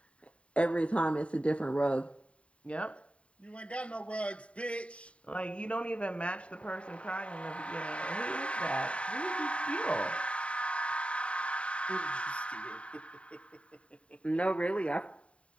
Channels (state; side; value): late; right; 0.062 ms